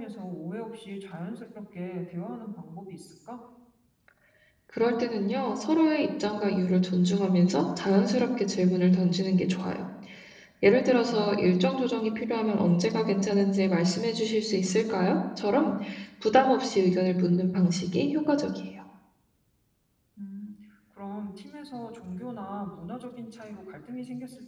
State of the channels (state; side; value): identical; both; correlation 1.00